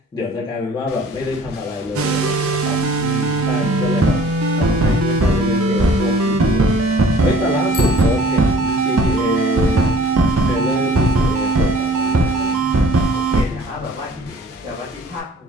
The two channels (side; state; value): both; normal; correlation 0.51